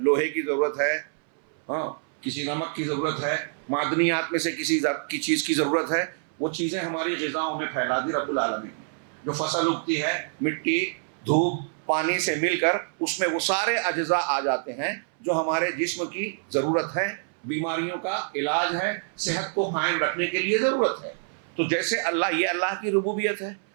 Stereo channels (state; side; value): silent; left; 61 dB below the other